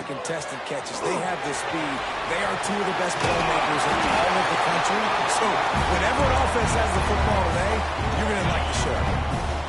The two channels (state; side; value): identical; both; correlation 1.00